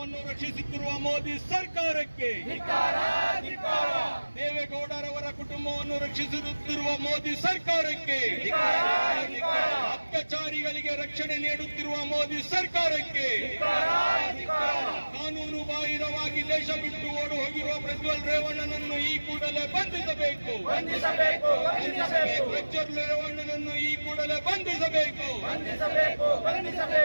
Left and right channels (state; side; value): inverted; both; correlation -1.00